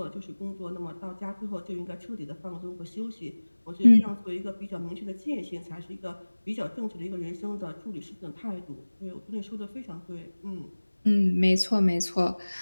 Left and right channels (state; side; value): inverted; both; correlation -1.00